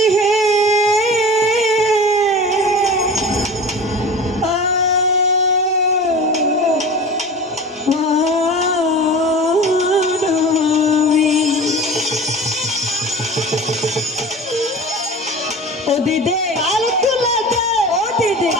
হে ও দিদে আলকুলাতে ও দিদে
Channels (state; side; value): normal; both; correlation 0.36